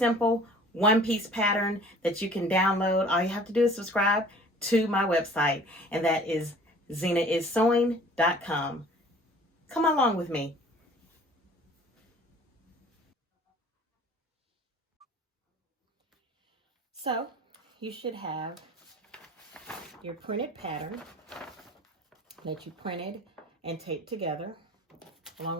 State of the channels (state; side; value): normal; both; correlation 0.49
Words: one-piece pattern that you can download. All you have to do is subscribe to my website, and that is zenaissewing.com. Come along with me. So you should have your printed pattern that you printed and taped together along